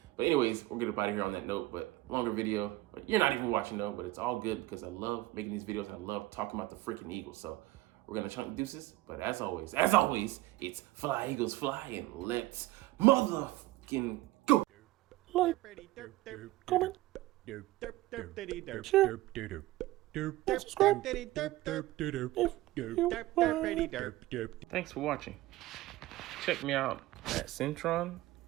But anyways, we'll get up out of here on that note, but longer video. But you're not even watching though, but it's all good because I love making these videos. I love talking about the freaking Eagles. So we're going to chunk deuces. But as always, it's Fly Eagles Fly, and let's motherfucking go. Like, comment, share, and subscribe if you like. Thanks for watching. Check me out at Centron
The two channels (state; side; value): quieter; left; 17.9 dB